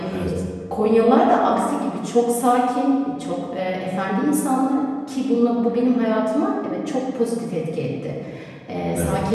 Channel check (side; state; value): both; identical; correlation 1.00